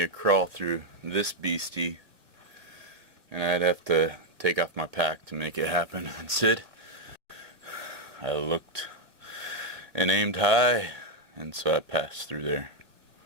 to crawl through this beastie, and I'd have to take off my pack to make it happen. And Sid, I looked and aimed high, and so I passed through there.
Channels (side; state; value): left; late; 2.0 ms